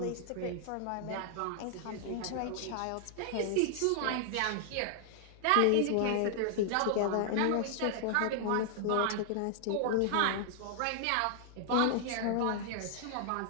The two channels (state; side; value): different; both; correlation -0.01